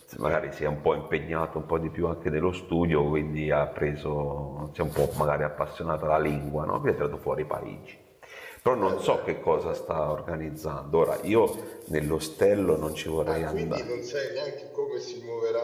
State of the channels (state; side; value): identical; both; correlation 1.00